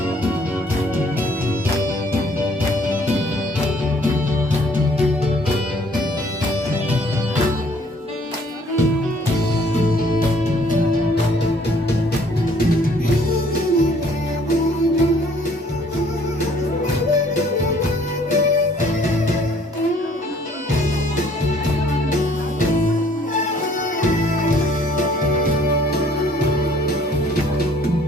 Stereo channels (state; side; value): normal; both; correlation 0.59